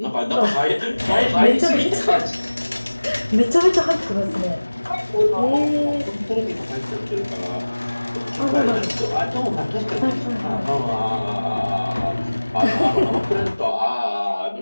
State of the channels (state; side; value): inverted; both; correlation -1.00